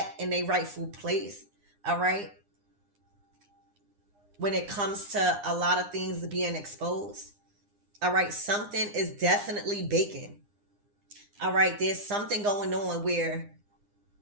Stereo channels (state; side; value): late; left; 9.8 ms